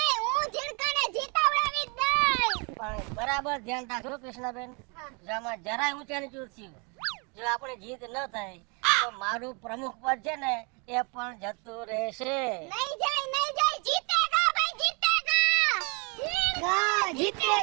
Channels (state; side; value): quieter; left; 32.7 dB